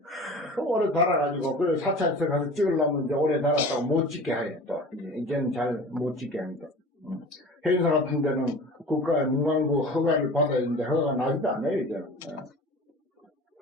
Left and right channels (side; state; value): both; normal; correlation 0.40